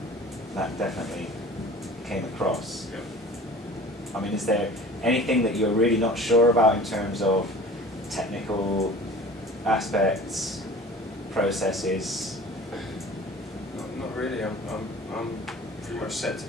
That definitely came across. Yep. I mean, is there anything that you're really not sure about in terms of technical aspects, processes? Not really. I'm pretty much set to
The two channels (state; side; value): normal; both; correlation 0.43